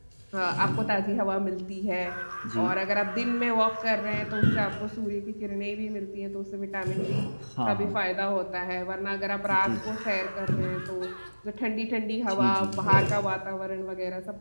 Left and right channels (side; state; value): both; inverted; correlation -1.00